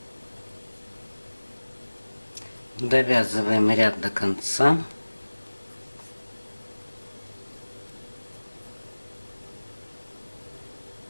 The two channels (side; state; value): both; inverted; correlation -1.00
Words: Довязываем ряд до конца.